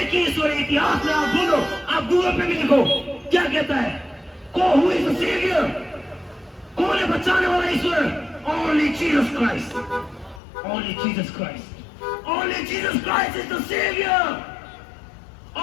ही ईश्वर है। इतिहास में आप बोलो, आप गूगल पे भी लिखो, क्या कहता है? Who is the saviour? कौन है बचाने वाला ईश्वर? Only Jesus Christ. Only Jesus Christ. Only Jesus Christ is the Savior.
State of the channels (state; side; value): drops out; right; at 10.4 s